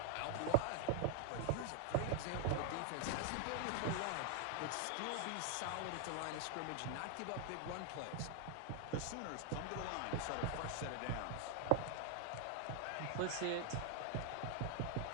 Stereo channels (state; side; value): different; both; correlation 0.00